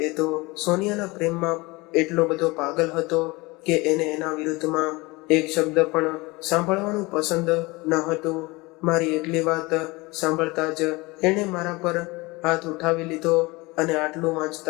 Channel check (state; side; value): quieter; right; 23.6 dB